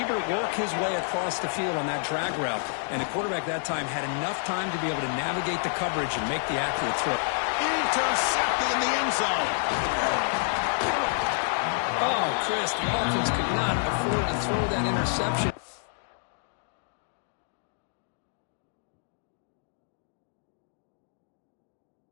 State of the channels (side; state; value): right; silent; digital silence